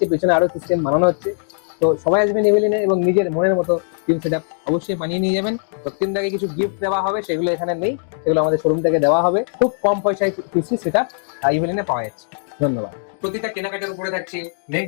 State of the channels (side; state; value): right; silent; digital silence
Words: পেছনে আরো সিস্টেম বানানো হচ্ছে। তো সবাই আসবেন ইউলিনে এবং নিজের মনের মতো টিম সেটআপ অবশ্যই বানিয়ে নিয়ে যাবেন। রক্তিনদাকে কিছু গিফট দেওয়া হবে, সেগুলো এখানে নেই, সেগুলো আমাদের শোরুম থেকে দেওয়া হবে। খুব কম পয়সায় পিসি সেটআপ ইউলিনে পাওয়া যাচ্ছে। ধন্যবাদ। প্রতিটা কেনাকাটার উপরে থাকছে নেক